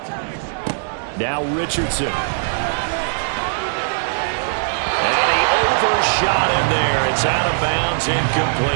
Now Richardson. And he overshot him there. It's out of bounds,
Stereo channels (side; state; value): left; silent; 66 dB below the other